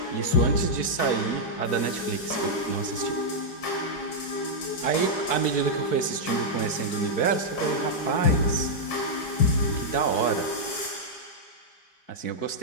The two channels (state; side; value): late; right; 4.6 ms